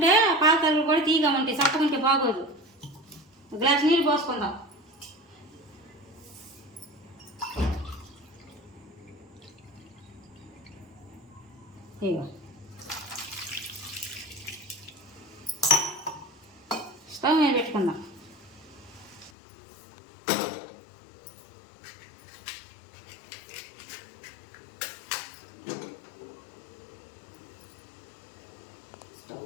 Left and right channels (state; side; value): drops out; right; at 19.3 s